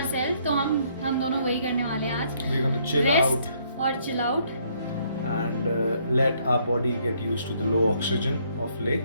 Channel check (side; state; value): both; inverted; correlation -0.67